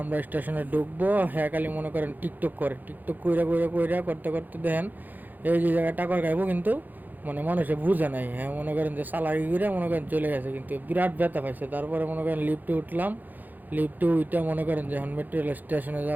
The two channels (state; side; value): late; left; 0.085 ms